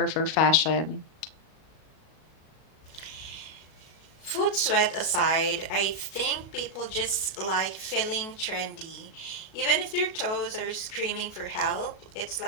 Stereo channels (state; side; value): late; right; 37 ms